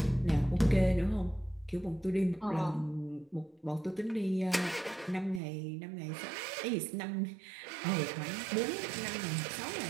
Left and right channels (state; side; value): drops out; left; at 5.4 s